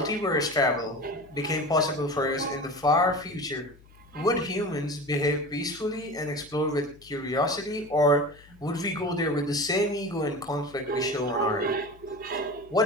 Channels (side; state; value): left; noise; hum, 25 dB below the sound